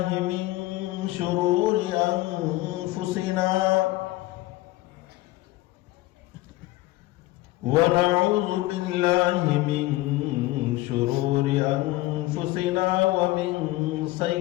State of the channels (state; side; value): quieter; right; 18.3 dB